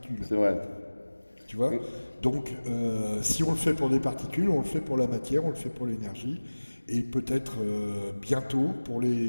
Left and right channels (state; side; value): inverted; both; correlation -1.00